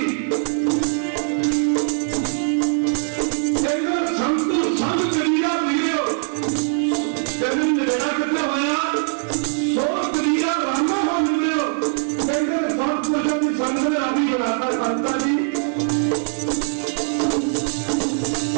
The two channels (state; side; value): silent; left; digital silence